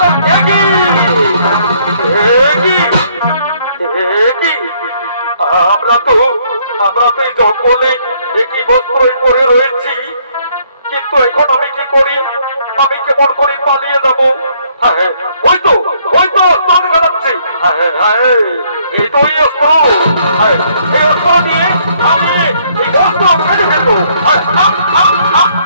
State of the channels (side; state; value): both; inverted; correlation -0.66